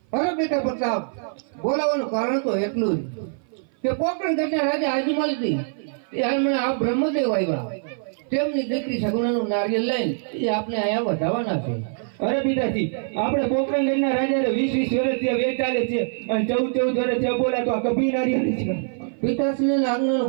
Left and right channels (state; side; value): silent; left; 56 dB below the other